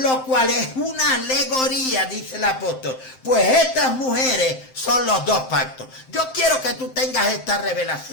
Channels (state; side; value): late; right; 7.7 ms